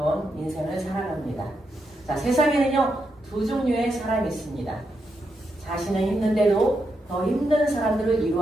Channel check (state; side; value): normal; both; correlation 0.83